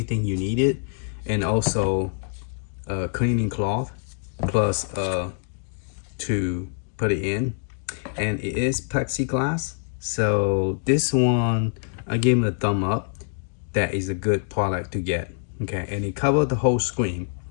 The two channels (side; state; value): right; silent; 62 dB below the other